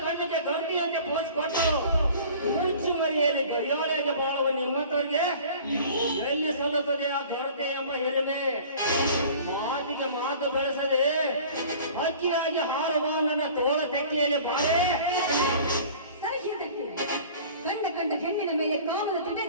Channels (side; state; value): both; inverted; correlation -0.45